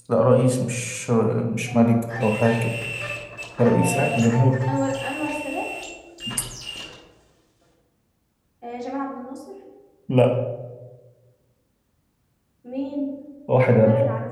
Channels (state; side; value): identical; both; correlation 1.00